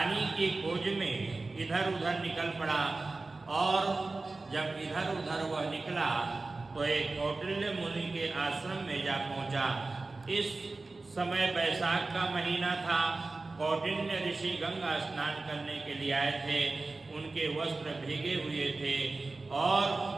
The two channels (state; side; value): quieter; left; 3.5 dB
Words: की खोज में इधर उधर निकल पड़ा और जब इधर उधर वह निकला तो एक कौटिल्य मुनि के आश्रम में जा पहुंचा। इस समय बैसाख का महीना था। कौटिल्य ऋषि गंगा स्नान करने के लिए आए थे। उनके वस्त्र भीगे हुए थे और